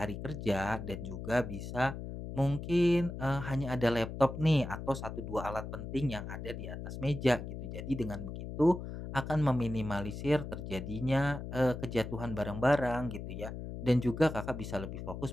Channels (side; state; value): left; noise; hum, 8 dB below the sound